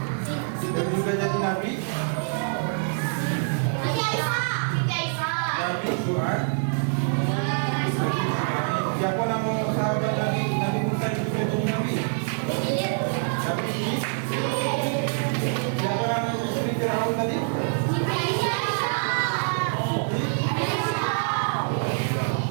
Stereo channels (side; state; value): left; silent; digital silence